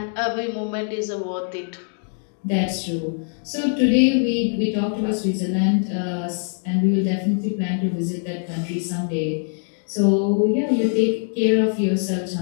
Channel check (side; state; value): right; silent; 58 dB below the other